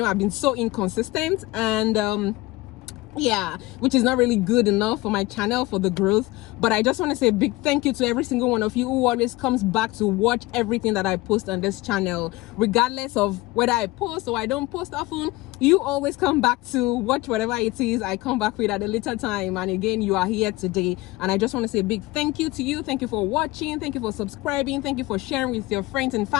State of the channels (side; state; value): right; quieter; 19.9 dB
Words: I've been so inconsistent, and yeah, which is not really good enough for my channel, for the growth. But I just want to say a big thank you to every single one of you who always comes back to watch everything that I post on this channel, regardless of whether I post or I don't post often. You always come back to watch whatever it is I come back with at a later time, and again, you are here today, and I just want to say a big thank you to you. Thank you for watching, thank you for subscribing, thank you for sharing with your friends and